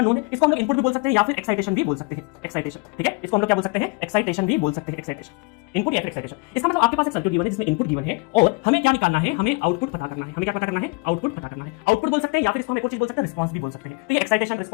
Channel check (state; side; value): quieter; right; 29.0 dB